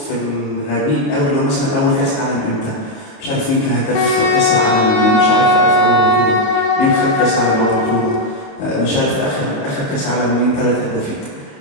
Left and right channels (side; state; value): right; late; 28 ms